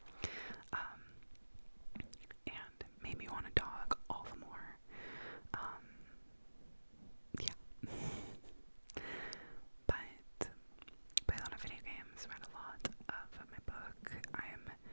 and made me want a dog all the more. Yeah. But played a lot of video games, read a lot of my book. I am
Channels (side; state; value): both; inverted; correlation -1.00